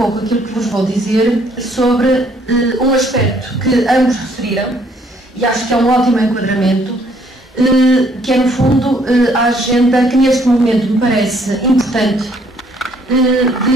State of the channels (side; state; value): both; normal; correlation 0.65